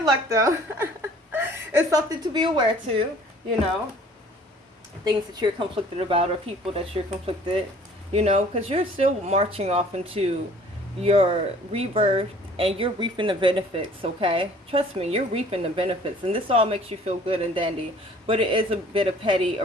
luck, though. It's something to be aware to, you know, things that you're conflicted about or people that you're conflicted, you know, because you're still marching off into your rebirth and you're reaping the benefits, okay? Trust me, you're reaping the benefits, and this all makes you feel good and dandy, but it is a bit of petty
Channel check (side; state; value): both; normal; correlation 0.52